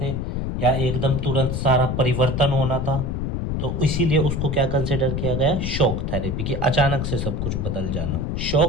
थे या एकदम तुरंत सारा परिवर्तन होना था, तो इसीलिए उसको क्या कंसिडर किया गया, शॉक थेरेपी, कि अचानक से सब कुछ बदल जाना।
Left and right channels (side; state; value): left; noise; rumble, 2 dB below the sound